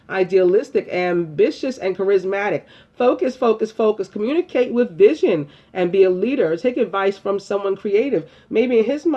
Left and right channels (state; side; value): identical; both; correlation 1.00